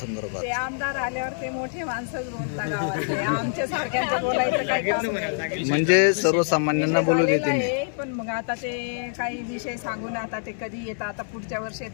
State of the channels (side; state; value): right; silent; 60 dB below the other